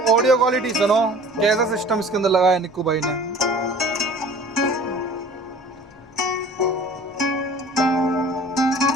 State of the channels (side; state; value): both; normal; correlation 0.47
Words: ऑडियो क्वालिटी सुनो, कैसा सिस्टम इसके अंदर लगाया निक्कू भाई ने।